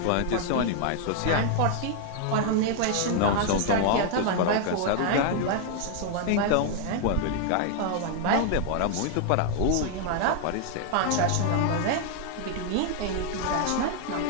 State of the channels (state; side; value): different; both; correlation 0.00